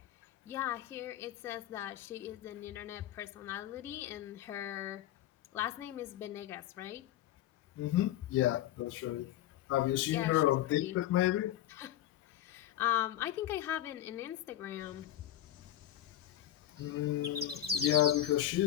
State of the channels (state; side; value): quieter; right; 12.6 dB